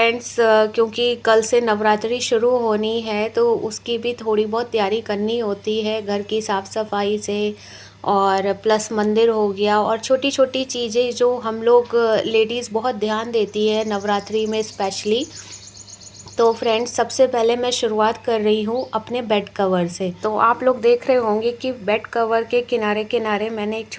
क्योंकि कल से नवरात्रि शुरू होनी है तो उसकी भी थोड़ी बहुत तैयारी करनी होती है, घर की साफ़ सफाई से और प्लस मंदिर हो गया और छोटी छोटी चीज़ें जो हम लोग लेडीज़ बहुत ध्यान देती है नवरात्रि में स्पेशली। तो फ्रेंड्स, सबसे पहले मैं शुरुआत कर रही हूँ अपने बेड कवर से। तो आप लोग देख रहे होंगे कि बेड कवर के किनारे किनारे मैंने एक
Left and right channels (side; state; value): both; identical; correlation 1.00